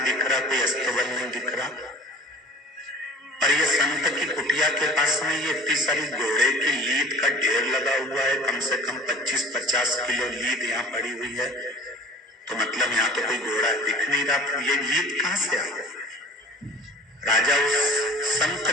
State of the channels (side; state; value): both; normal; correlation 0.45